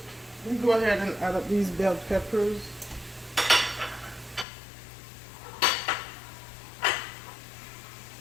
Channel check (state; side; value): drops out; right; at 4.5 s